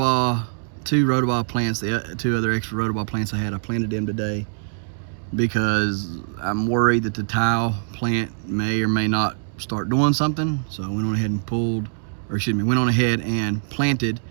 2 rotoball plants, the 2 other extra rotoball plants I planted them today because I'm worried that the tile plant may or may not start doing something. So I went on ahead and went on ahead and planted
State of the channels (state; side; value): silent; left; digital silence